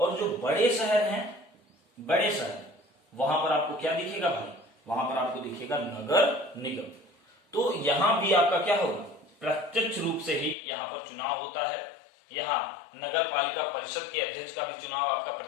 जो बड़े शहर हैं, बड़े शहर, वहां पर आपको क्या दिखेगा भाई, वहां पर आपको दिखेगा नगर निगम। तो यहां भी आपका क्या होगा, प्रत्यक्ष रूप से ही यहाँ पर चुनाव होता है। यहाँ नगर पालिका परिषद के अध्यक्ष का भी चुनाव आपका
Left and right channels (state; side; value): drops out; right; at 10.6 s